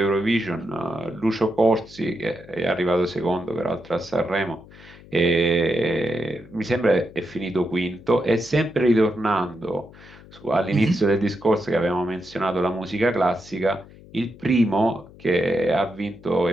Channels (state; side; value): noise; left; hum, 21 dB below the sound